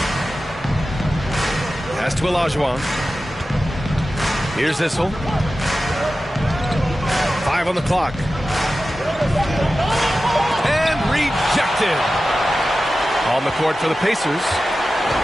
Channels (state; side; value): normal; both; correlation 0.94